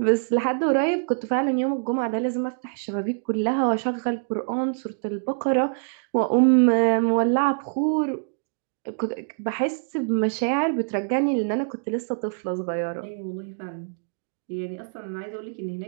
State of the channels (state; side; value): silent; left; digital silence